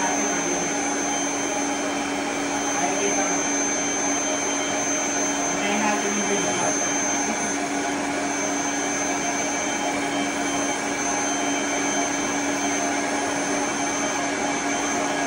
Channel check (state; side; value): identical; both; correlation 1.00